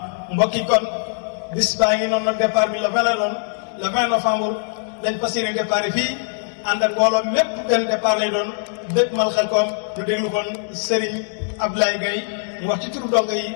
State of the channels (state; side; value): silent; right; digital silence